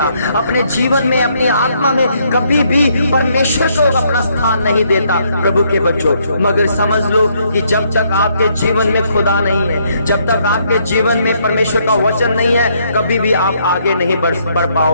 अपने जीवन में, अपनी आत्मा में कभी भी परमेश्वर को अपना स्थान नहीं देता प्रभु के बच्चों। मगर समझ लो कि जब तक आपके जीवन में खुदा नहीं है, जब तक आपके जीवन में परमेश्वर का वचन नहीं है, कभी भी आप आगे नहीं बढ़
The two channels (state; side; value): inverted; both; correlation -0.71